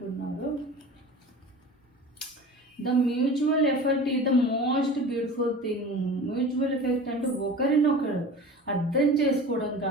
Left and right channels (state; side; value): normal; both; correlation 0.37